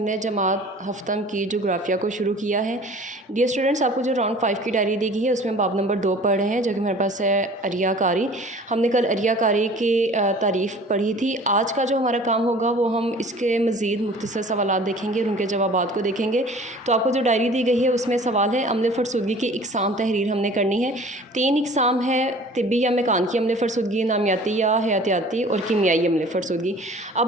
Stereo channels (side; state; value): both; normal; correlation 0.46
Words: जमात हफ्तम की जोग्राफिया को शुरू किया है। डियर स्टूडेंट्स, आपको जो राउंड 5 की डायरी दी गई है उसमें बाब नंबर 2 पढ़ रहे हैं, जो कि हमारे पास है अरियाकारी। हमने कल अरियाकारी की तारीफ़ पढ़ी थी। आज का जो हमारा काम होगा वो हम इसके मज़ीद मुख्तसर सवालात देखेंगे और उनके जवाबात को देखेंगे। तो आपको जो डायरी दी गई है उसमें सवाल है अम्ल फ़रसुदगी की इकसाम तहरीर हमने करनी है। 3 इकसाम है, तिब्बी या मेकानिकी अम्ल फ़रसुदगी, नामियाती या हयातियाती और कीमियाई अम्ल फ़रसुदगी।